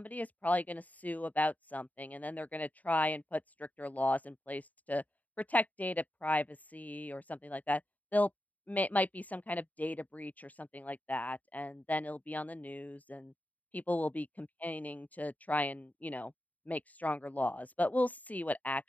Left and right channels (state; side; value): late; right; 0.075 ms